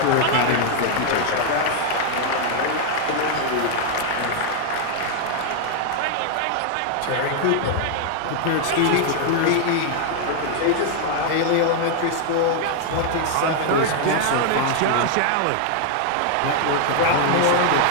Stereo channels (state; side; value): different; both; correlation 0.00